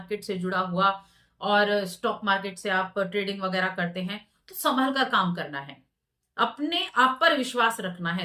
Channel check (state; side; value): identical; both; correlation 1.00